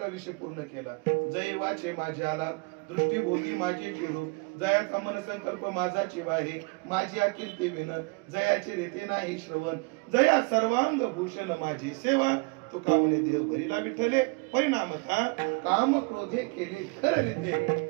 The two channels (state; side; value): quieter; left; 30.6 dB